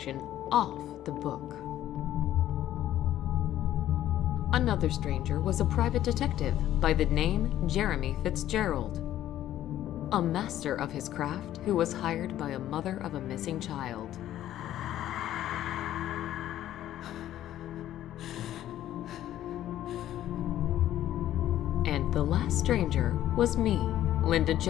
off the book. Another stranger was a private detective by the name Jeremy Fitzgerald, a master of his craft who was hired by a mother of a missing child. And the last stranger was me, Linda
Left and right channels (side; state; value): right; quieter; 12.6 dB